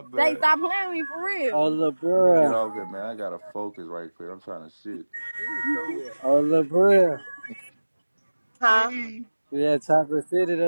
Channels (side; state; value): both; inverted; correlation -1.00